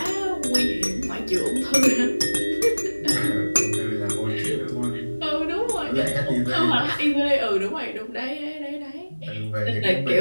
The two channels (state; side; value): inverted; both; correlation -1.00